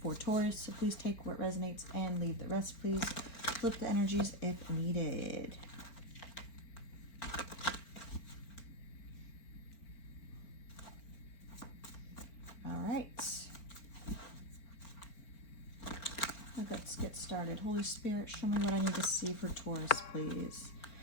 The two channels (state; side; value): late; right; 4.4 ms